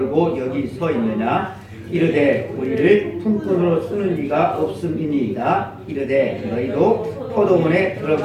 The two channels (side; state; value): both; identical; correlation 1.00